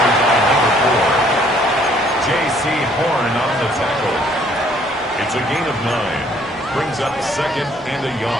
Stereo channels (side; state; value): both; normal; correlation 0.62